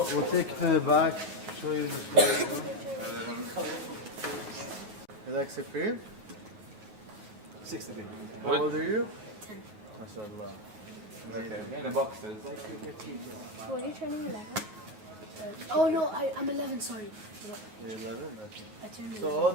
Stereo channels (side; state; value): left; late; 9.4 ms